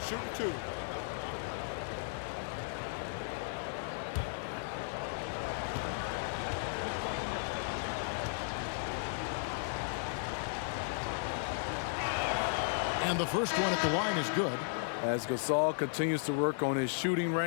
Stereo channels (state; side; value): silent; right; 54 dB below the other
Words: 2. Shooting 2. And the first one at the line is good. As Gasol continues to work on his shooting